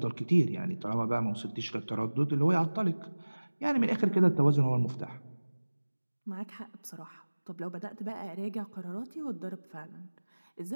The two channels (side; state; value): both; inverted; correlation -1.00